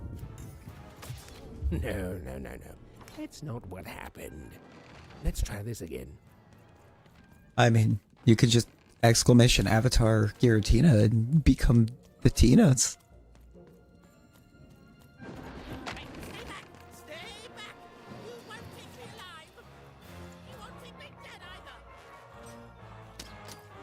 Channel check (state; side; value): identical; both; correlation 1.00